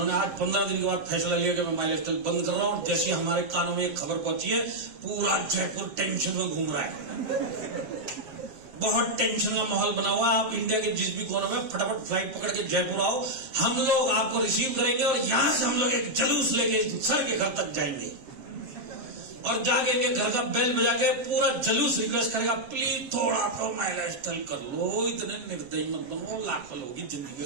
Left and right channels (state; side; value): late; left; 7.2 ms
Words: आज 15 दिन के बाद फैसला लिया कि मैं माइलस्टाइल बंद कर रहा हूं। जैसे हमारे कानों में एक खबर पहुंची है, पूरा जयपुर टेंशन में घूम रहा है, बहुत टेंशन का माहौल बना हुआ। आप इंडिया के जिस भी कोने में फटाफट फ्लाइट पकड़ के जयपुर आओ, हम लोग आपको रिसीव करेंगे और यहां से हम लोग एक जुलूस लेके सर के घर तक जाएंगे और जाके इनके घर का बेल बजा के पूरा जुलूस रिक्वेस्ट करेगा, प्लीज थोड़ा तो माइलस्टाइल कर लो, इतने निर्दयी मत बनो, लाखों लोगों की